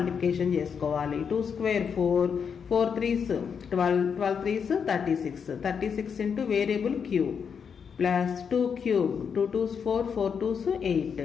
చేసుకోవాలి. 2 square 4, 4 3s 12, 12 3s 36, 36 into variable q plus 2³ 2 2s 4, 4 2s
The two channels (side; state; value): right; quieter; 6.7 dB